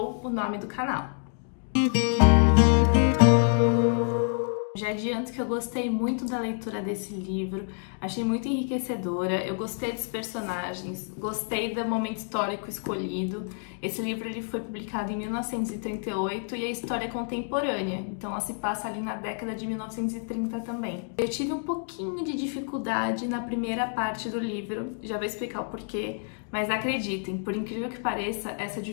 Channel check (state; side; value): silent; right; 59 dB below the other